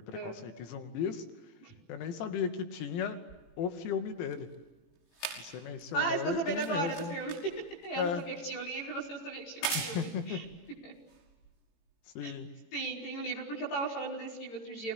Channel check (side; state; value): right; late; 18 ms